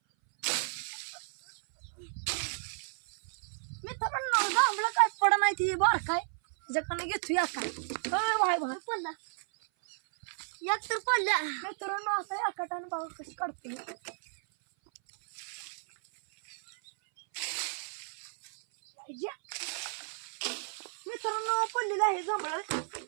मित्रांनो, जांभळं काय पड नाही ती बार काय त्याच्याकडनं घेतो या काय भाई भाई पडला एक तर पडल्या. मित्रांनो, असं या कटाने बाबा कशी काढते. मित्रांनो, पडलेलं आहे जांभळं.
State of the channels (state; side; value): silent; left; 56 dB below the other